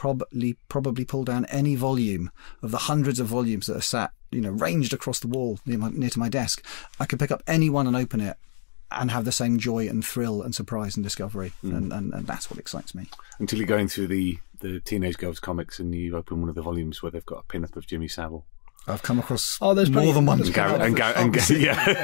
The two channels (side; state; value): right; silent; digital silence